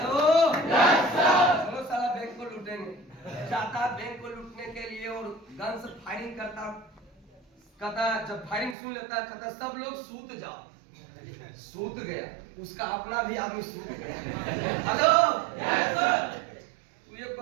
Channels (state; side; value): drops out; left; at 8.8 s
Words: चलो साला बैंक को लूटेंगे, जाता है बैंक को लूटने के लिए और गन से फायरिंग करता, कहता जब फायरिंग सुन लेता है, कहता सब लोग सूत जाओ, सूत गया, उसका अपना भी आदमी सूत गया। हेलो, तू एक को